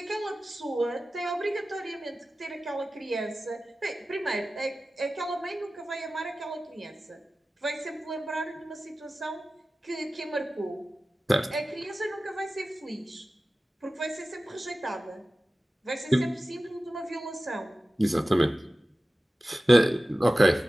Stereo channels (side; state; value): both; normal; correlation 0.95